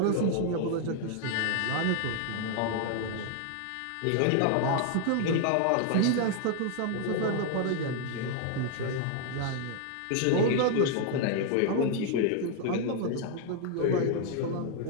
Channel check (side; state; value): both; different; correlation 0.00